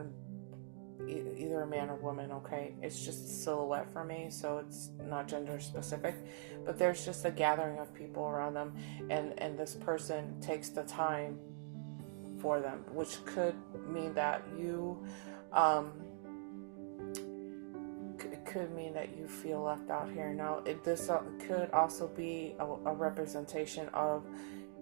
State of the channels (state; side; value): silent; left; digital silence